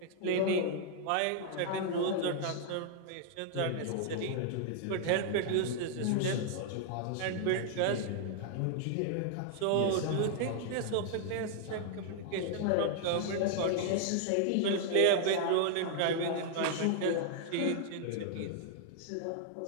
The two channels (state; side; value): different; both; correlation -0.01